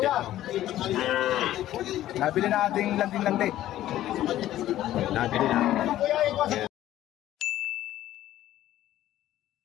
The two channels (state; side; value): quieter; right; 13.5 dB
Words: na. Nabili na ating landing-landing. Nabili na. Ayan.